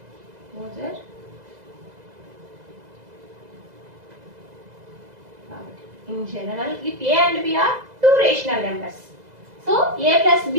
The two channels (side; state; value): left; late; 2.0 ms